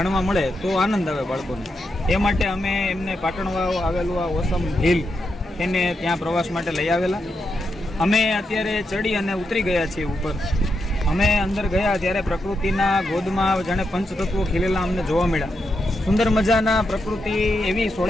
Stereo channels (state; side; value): normal; both; correlation 0.84